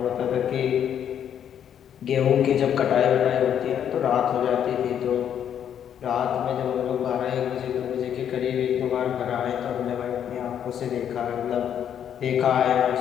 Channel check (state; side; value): quieter; right; 9.2 dB